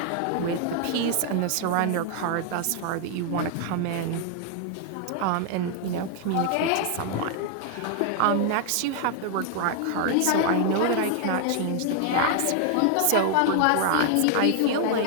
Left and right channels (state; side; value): different; both; correlation 0.00